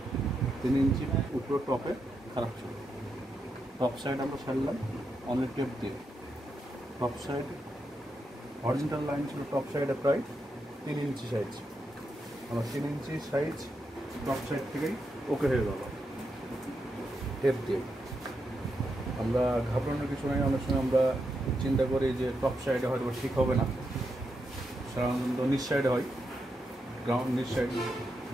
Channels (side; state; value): both; normal; correlation 0.84